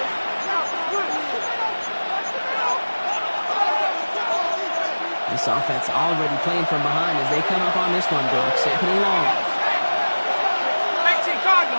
This offense already playing from behind as they come up on this one, Brock. Second and long.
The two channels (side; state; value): both; inverted; correlation -1.00